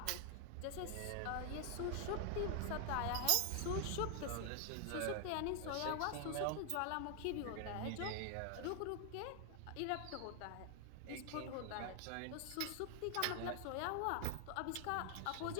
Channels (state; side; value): different; both; correlation 0.00